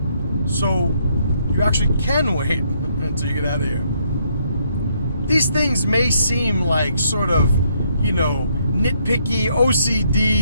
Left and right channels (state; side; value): inverted; both; correlation -0.71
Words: So you actually can wait until you get out of here. These things may seem like sort of, you know, nitpicky,